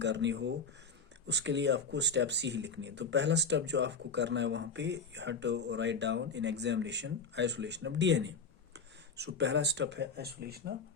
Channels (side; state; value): right; quieter; 4.3 dB